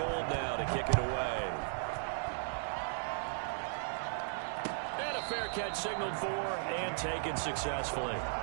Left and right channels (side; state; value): left; silent; digital silence